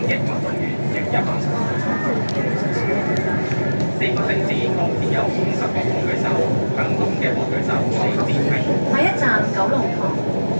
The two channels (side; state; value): both; inverted; correlation -1.00